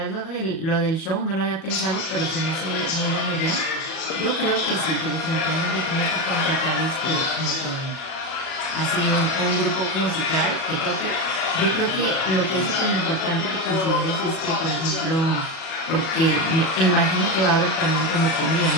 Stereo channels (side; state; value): right; late; 37 ms